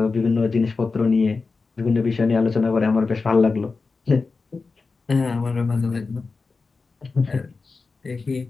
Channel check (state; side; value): quieter; right; 4.2 dB